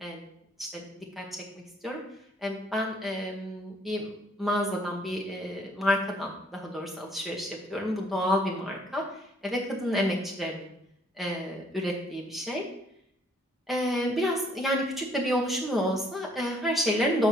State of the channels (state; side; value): normal; both; correlation 0.64